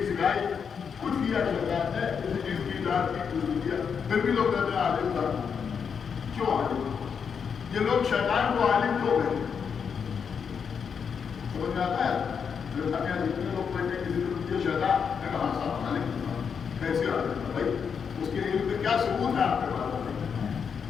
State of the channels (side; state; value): right; quieter; 6.6 dB